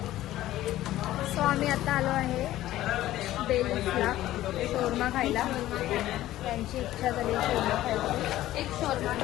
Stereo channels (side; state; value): right; quieter; 14.6 dB